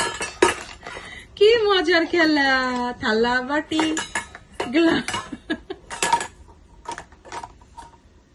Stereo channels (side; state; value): both; identical; correlation 1.00